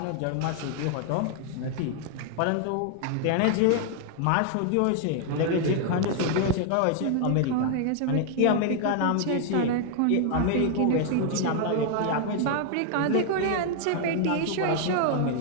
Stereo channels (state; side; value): different; both; correlation 0.00